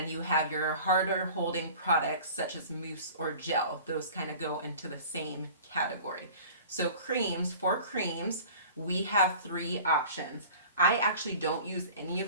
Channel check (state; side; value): inverted; both; correlation -0.43